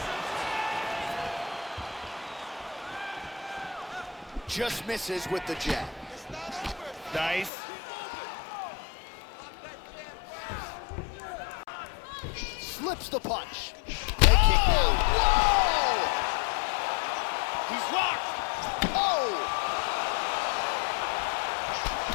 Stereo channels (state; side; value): drops out; right; at 7.5 s